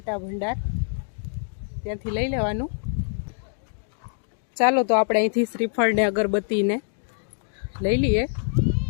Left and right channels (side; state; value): right; silent; digital silence